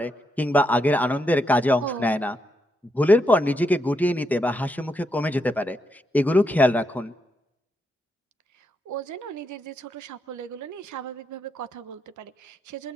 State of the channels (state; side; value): normal; both; correlation 0.81